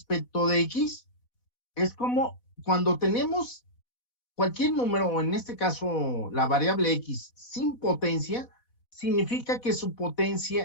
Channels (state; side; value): late; right; 4.1 ms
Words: de x es como cuando tenemos cualquier número, o en este caso la variable x sin potencia, significa que su